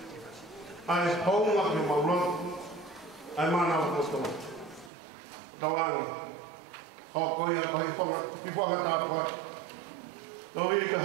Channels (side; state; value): left; drops out; at 4.9 s